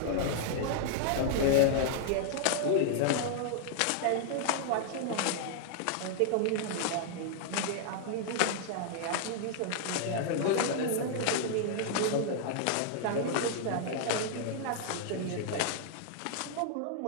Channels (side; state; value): both; different; correlation -0.01